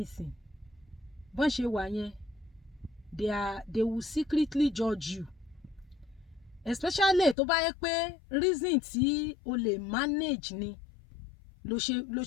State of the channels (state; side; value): drops out; right; at 7.4 s